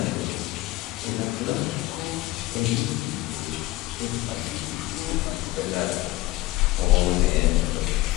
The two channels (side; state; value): right; quieter; 18.8 dB